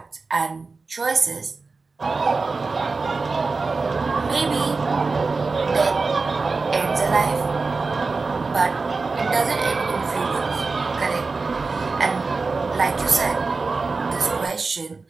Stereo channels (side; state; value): left; quieter; 4.1 dB